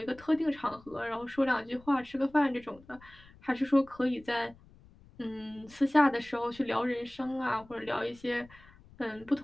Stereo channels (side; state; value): left; noise; rumble, 24 dB below the sound